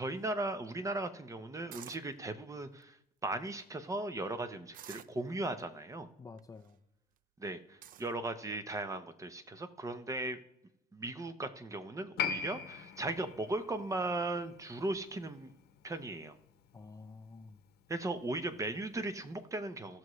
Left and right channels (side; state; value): both; normal; correlation 0.48